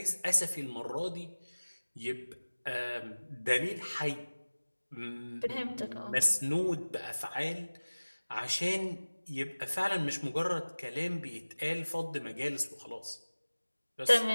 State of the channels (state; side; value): inverted; both; correlation -1.00